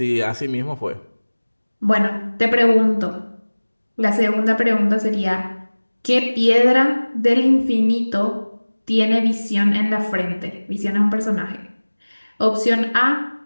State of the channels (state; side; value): inverted; both; correlation -1.00